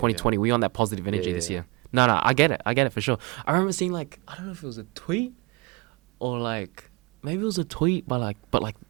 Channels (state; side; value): quieter; left; 25.9 dB